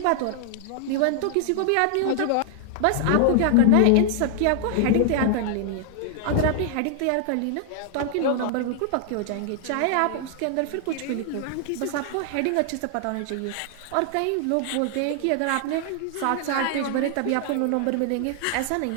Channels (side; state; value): both; different; correlation 0.00